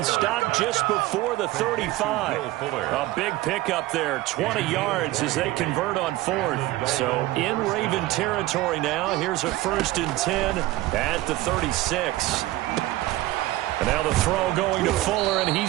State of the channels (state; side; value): quieter; left; 17.2 dB